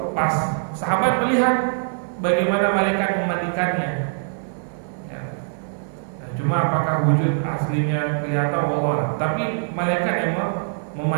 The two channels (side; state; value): left; silent; digital silence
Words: pas sahabat melihat bagaimana malaikat memandikannya, ya. Nah, cuma apakah wujud aslinya kelihatan Allah, tapi malaikat yang